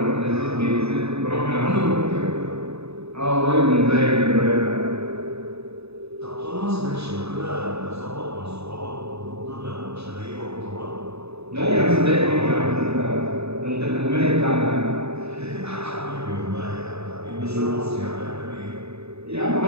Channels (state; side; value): late; left; 0.79 ms